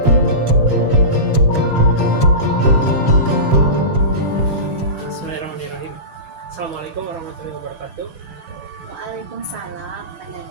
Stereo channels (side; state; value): left; late; 7.2 ms